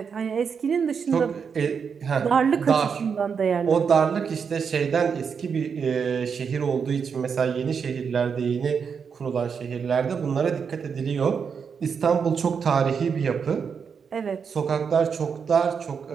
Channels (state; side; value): quieter; left; 6.4 dB